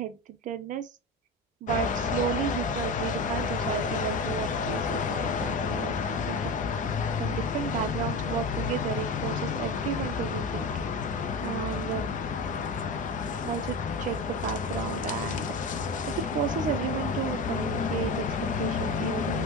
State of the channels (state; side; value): normal; both; correlation 0.25